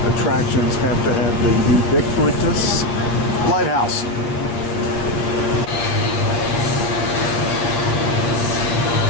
attractions have to have the ubiquitous lighthouse.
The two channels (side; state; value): right; late; 8.6 ms